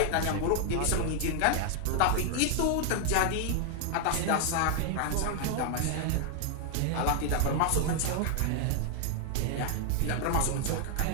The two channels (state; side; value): different; both; correlation 0.00